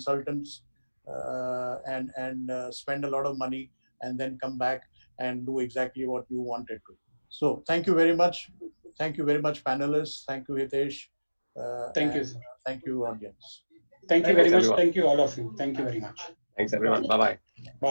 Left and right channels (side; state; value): both; inverted; correlation -1.00